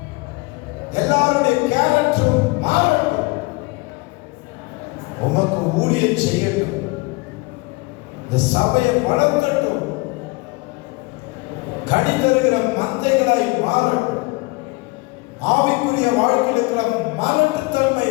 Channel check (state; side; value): quieter; right; 25.8 dB